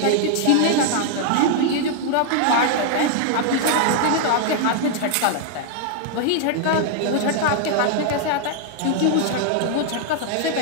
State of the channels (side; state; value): both; different; correlation 0.00